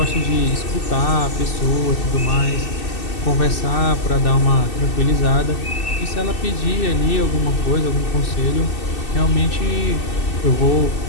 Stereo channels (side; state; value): right; late; 2.6 ms